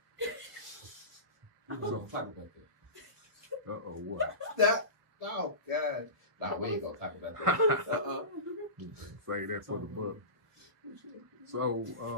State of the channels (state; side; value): late; left; 1.4 ms